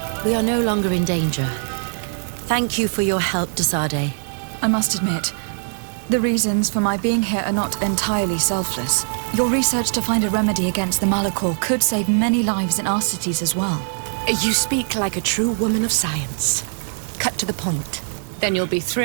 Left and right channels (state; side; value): silent; left; 65 dB below the other